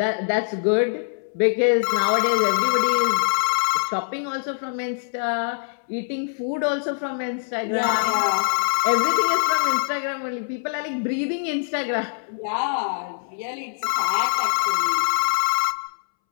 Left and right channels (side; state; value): right; silent; 63 dB below the other